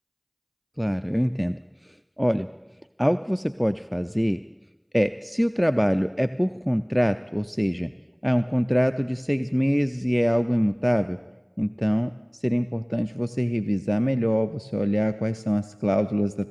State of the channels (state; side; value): identical; both; correlation 1.00